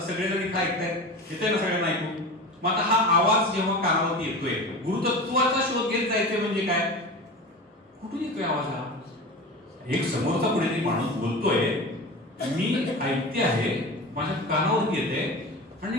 सगळेजण इथं ऐकतायत, येतंय ना सगळ्यांना ऐकू. मग आता हा आवाज जेव्हा कानावरती येतोय, गुरुतत्वाचा शोध घेत जायचंय म्हणजे काय, कुठून येतोय आवाज हा. एक समोरचा कोणीतरी माणूस बोलतोय, मी ऐकते आहे, माझ्या कानावरती येते आणि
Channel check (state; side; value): normal; both; correlation 0.31